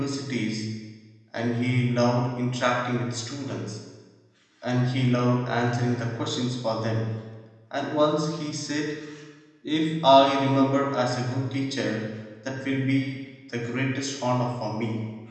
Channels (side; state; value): both; identical; correlation 1.00